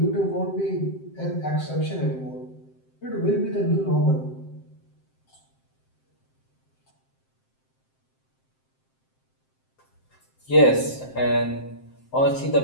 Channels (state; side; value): late; right; 7.7 ms